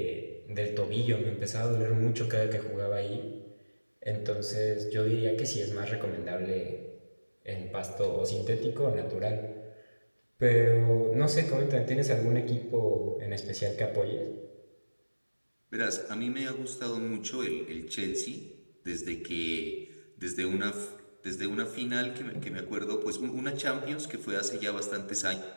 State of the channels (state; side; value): inverted; both; correlation -1.00